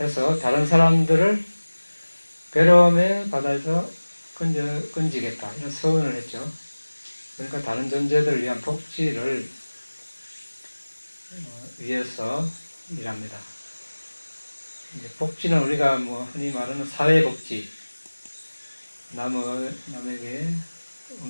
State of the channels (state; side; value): inverted; both; correlation -1.00